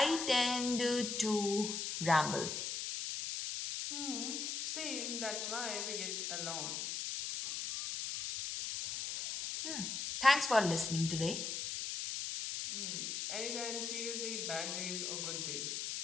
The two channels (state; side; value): noise; left; hiss, 3 dB below the sound